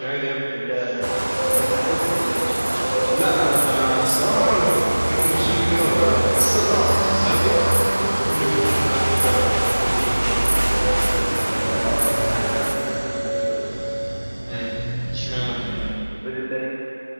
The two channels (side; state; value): both; inverted; correlation -1.00